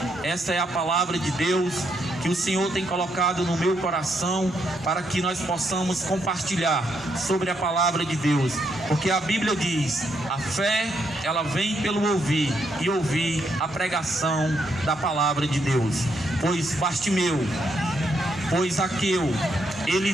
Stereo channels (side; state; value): both; normal; correlation 0.76